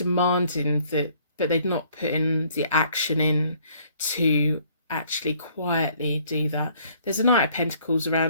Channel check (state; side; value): inverted; both; correlation -0.61